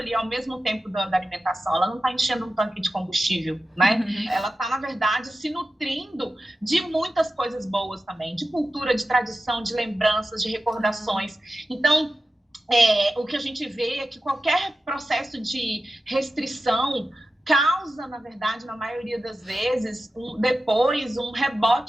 ao mesmo tempo da alimentação. Ela não está enchendo um tanque de combustível, né? Ela está, na verdade, se nutrindo de muitas coisas boas também, de cultura, de tradição, de lembranças, de recordações. Então, o que a gente vê é que qualquer processo de restrição causa, na verdade, na maioria das vezes, depois um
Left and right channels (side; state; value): both; normal; correlation 0.93